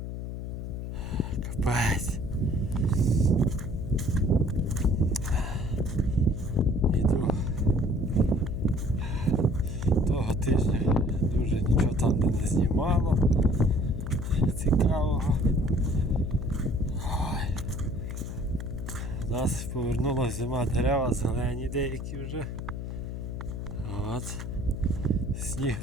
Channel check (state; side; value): noise; left; hum, 6 dB below the sound